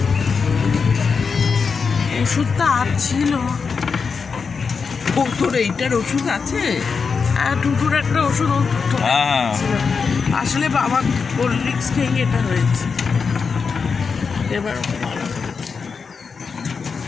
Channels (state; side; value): quieter; right; 5.4 dB